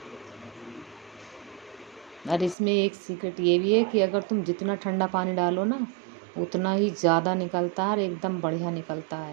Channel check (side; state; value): left; drops out; at 2.6 s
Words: और इसमें एक सीक्रेट ये भी है कि अगर तुम जितना ठंडा पानी डालो ना उतना ही ज़्यादा निकलता है और एकदम बढ़िया निकलता